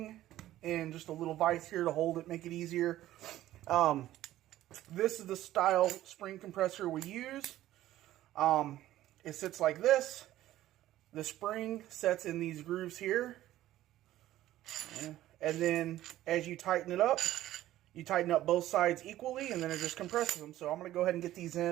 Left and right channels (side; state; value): left; quieter; 14.2 dB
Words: and just a little vise here to hold it, make it easier. This is the style spring compressor we use. It sits like this. The spring sets in these grooves here. And then as you tighten it up, you tighten up both sides equally, and then it just compresses them. So I'm going to go ahead and get these